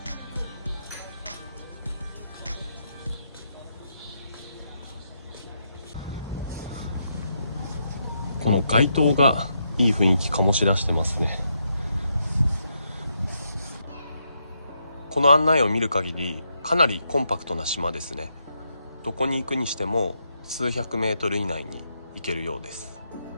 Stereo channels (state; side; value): inverted; both; correlation -0.80